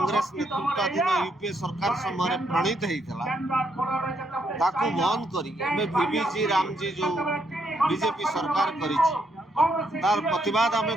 ନେତୃତ୍ୱାଧୀନ ୟୁପିଏ ସରକାର ସମୟରେ ପ୍ରଣୀତ ହେଇଥିଲା ତାକୁ ବନ୍ଦ କରି ଏବେ ଭିବିଜି ରାମଜି ଯେଉଁ ବିଜେପି ସରକାର କରିଛି ତାର ପ୍ରତିବାଦ ଆମେ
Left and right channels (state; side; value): normal; both; correlation 0.75